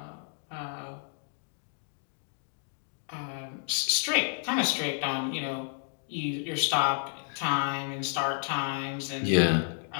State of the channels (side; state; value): right; silent; digital silence